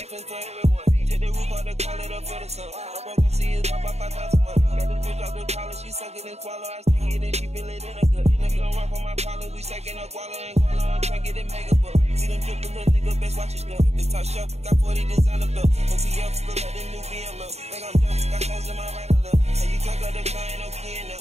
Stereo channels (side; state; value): left; late; 0.31 ms